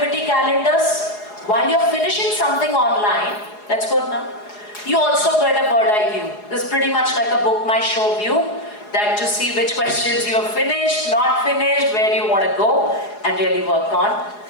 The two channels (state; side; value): late; right; 4.8 ms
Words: calendars. While you're finishing something online, let's go now. You also get a bird eye view. This is pretty much like a book my show view, that to see which questions you have finished, not finished, where you want to go and really work on.